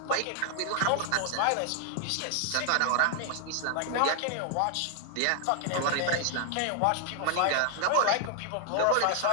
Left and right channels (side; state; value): both; different; correlation 0.00